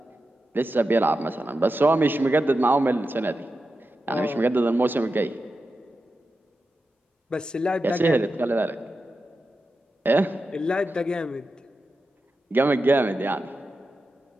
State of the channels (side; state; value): both; normal; correlation 0.90